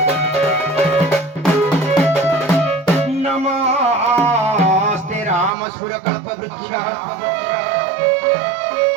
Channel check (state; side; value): drops out; left; at 5.5 s